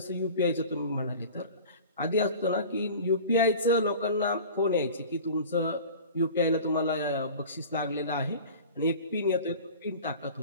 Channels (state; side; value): inverted; both; correlation -0.40